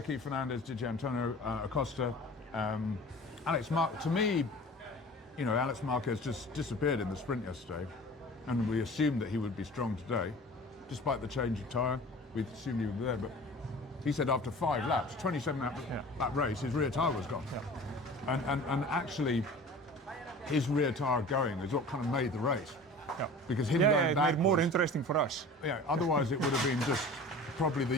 Fernandez, Di Antonio, Acosta, Alex Marquez. To me, Alex Marquez just disappeared in the sprint yesterday, and we assumed that he would be strong today, despite the change of tyre. We assumed he would be there, but he said after 5 laps, 27 lap race, his rear tyre was gone. And actually, his rear tyre going is what kind of made the race. Because him going back made it more interesting for us. Yeah, otherwise it would have been just probably the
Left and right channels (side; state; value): both; normal; correlation 0.41